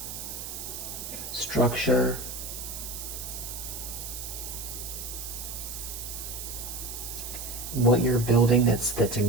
structure, what you're building that's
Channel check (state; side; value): noise; right; hiss, 7 dB below the sound